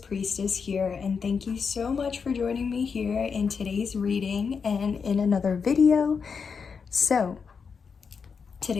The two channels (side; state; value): right; quieter; 5.8 dB